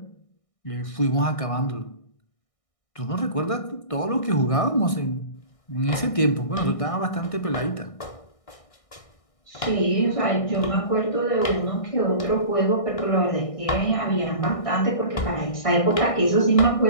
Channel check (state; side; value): late; right; 1.6 ms